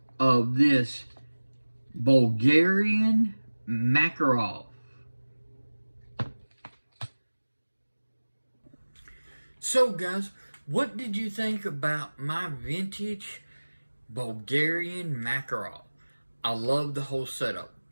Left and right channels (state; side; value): inverted; both; correlation -1.00